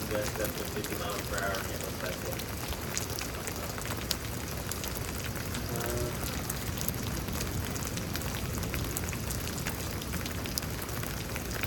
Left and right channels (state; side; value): identical; both; correlation 1.00